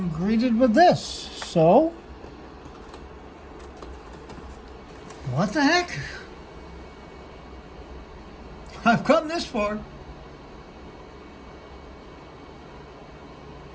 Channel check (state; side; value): identical; both; correlation 1.00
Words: greeted with this. So, what the heck? I've come this far.